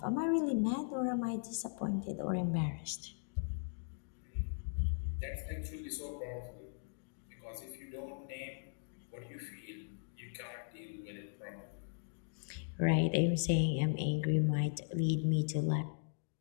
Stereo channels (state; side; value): silent; right; digital silence